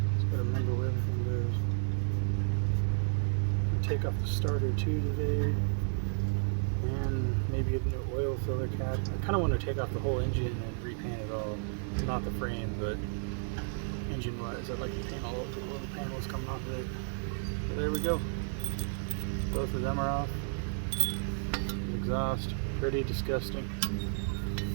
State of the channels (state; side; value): silent; left; digital silence